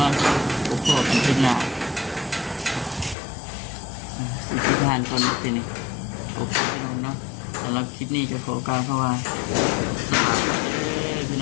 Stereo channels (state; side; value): drops out; right; at 3.2 s